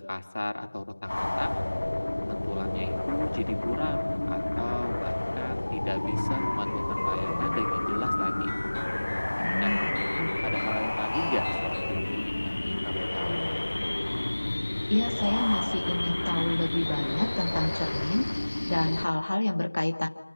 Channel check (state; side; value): inverted; both; correlation -1.00